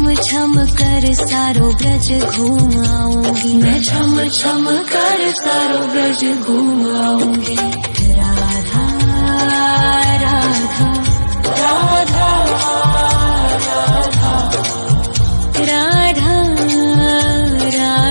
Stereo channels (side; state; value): both; inverted; correlation -1.00